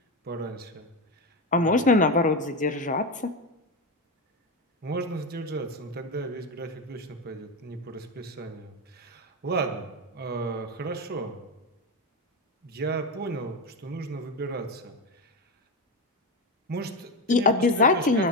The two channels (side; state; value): both; normal; correlation 0.15